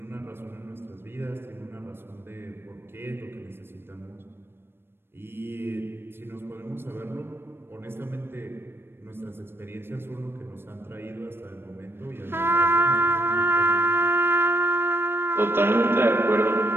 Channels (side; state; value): left; late; 0.11 ms